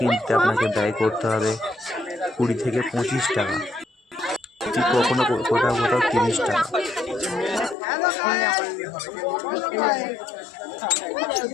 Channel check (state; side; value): drops out; right; at 7.8 s